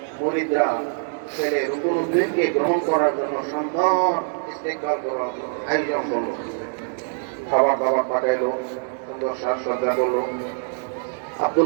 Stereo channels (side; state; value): left; silent; 63 dB below the other